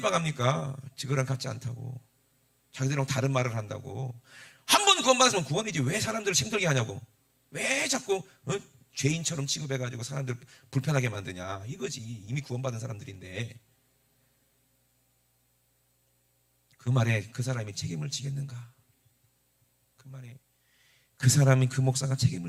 지그랑 같지 않다고. 자기들이랑 다른 말을 한다고. 한 번 구원받았으면 구원이지 왜 사람들을 힘들게 하냐고. 왜 자꾸 죄인처럼 취급해가지고 사람들 불편하게 만드냐. 이거지. 이미 구원받은 사람들인데. 그 말에 그 사람이 책임을 지겠는가? 그 말에 그 사람이, 그 목사가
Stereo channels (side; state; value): both; identical; correlation 1.00